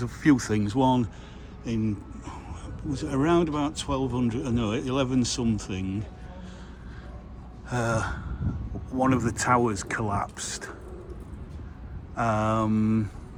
a few things. One, was it around about 1200, no, 11 something, one of the towers collapsed. I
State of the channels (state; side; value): identical; both; correlation 1.00